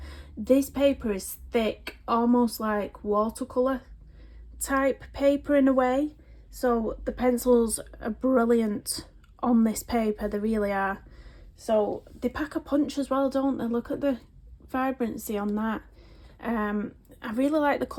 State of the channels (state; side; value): identical; both; correlation 1.00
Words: This paper is thick, almost like watercolour type paper in a way. So the pencils are brilliant on this paper, they really are. So they pack a punch as well, don't they? Look at the vibrancy on that. I really like the